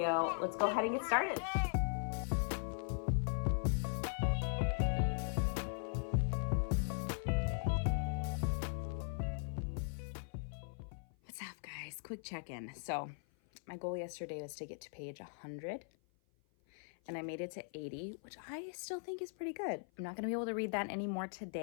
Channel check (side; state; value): right; silent; 51 dB below the other